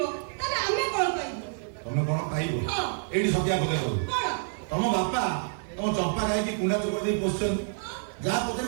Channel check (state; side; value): silent; left; digital silence